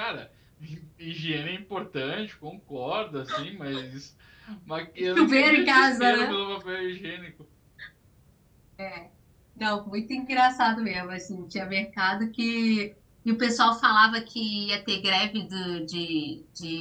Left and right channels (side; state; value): both; identical; correlation 1.00